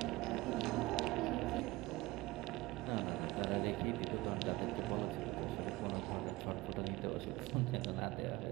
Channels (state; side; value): quieter; left; 20.2 dB